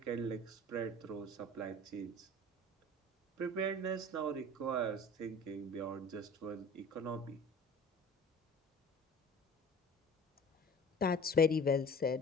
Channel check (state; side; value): normal; both; correlation 0.43